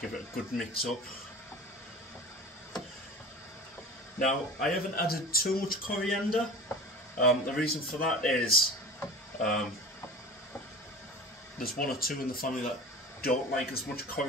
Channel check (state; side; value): normal; both; correlation 0.35